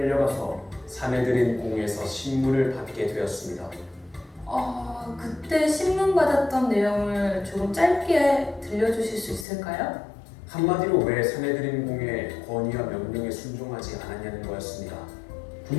사내들인 공에서 신문을 받게 되었습니다. 그때 신문 받았던 내용을 조금 짧게 들려주실 수 있을까요? 한마디로 왜 사내들인 공의 권위와 명령에 순종하지 않았냐는 거였습니다.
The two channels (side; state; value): right; drops out; at 9.5 s